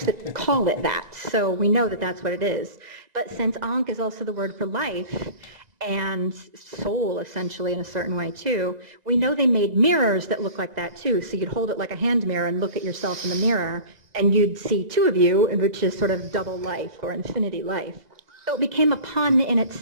that call it that, so we know that that's what it is. But since ankh is also the word for life, and soul essentially in a certain way too, we know they made mirrors that look like that too. So you'd hold it like a hand mirror and look at yourself in the mirror and you'd see two of you, which is sort of double life or infinity life. So it became a pun in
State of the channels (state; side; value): late; left; 2.0 ms